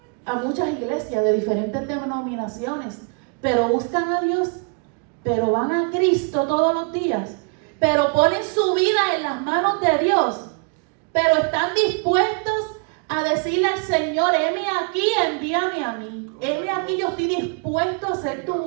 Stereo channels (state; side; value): quieter; left; 37.3 dB